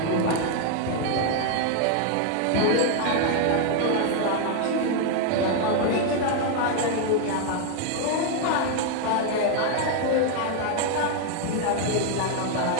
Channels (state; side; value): different; both; correlation 0.00